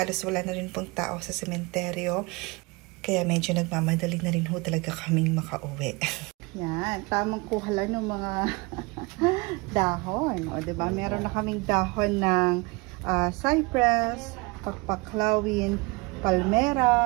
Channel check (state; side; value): quieter; left; 26.2 dB